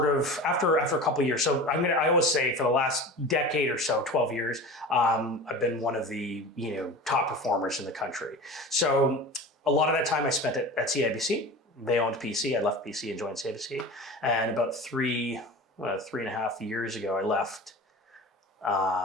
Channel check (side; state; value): both; normal; correlation 0.34